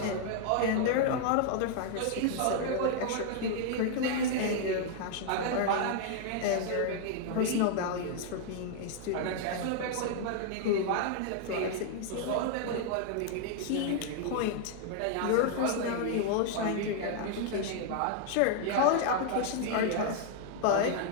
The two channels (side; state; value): both; different; correlation 0.00